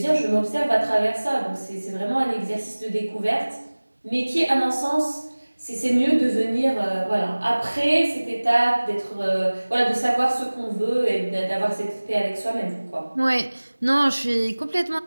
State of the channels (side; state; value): both; inverted; correlation -1.00